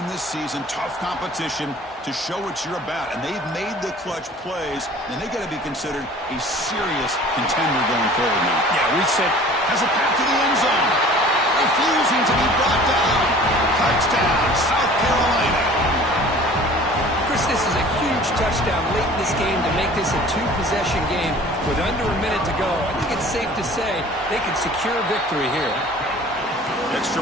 this season. Tough competition to show what you're about. And they've made the clutch plays, and they got to be considered a serious contender going forward now. Yeah, we said has a path to the end zone. Refusing to be brought down. Touchdown, South Carolina. Chris, this is a huge touchdown late in this game to make this a two-possession game with under a minute to go. I think it's safe to say they can secure victory here.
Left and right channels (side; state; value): both; normal; correlation 0.46